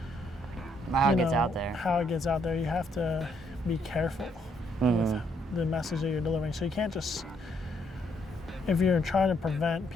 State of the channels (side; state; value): both; normal; correlation 0.72